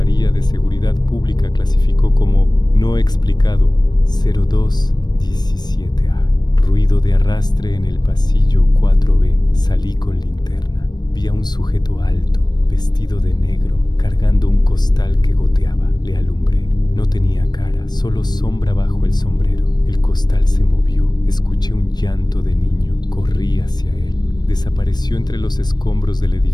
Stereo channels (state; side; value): late; right; 0.20 ms